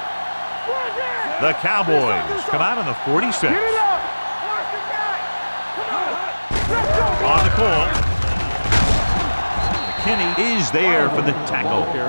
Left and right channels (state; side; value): inverted; both; correlation -1.00